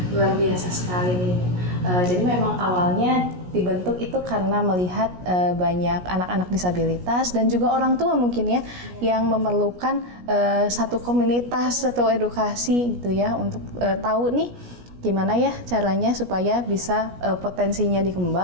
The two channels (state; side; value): late; left; 17 ms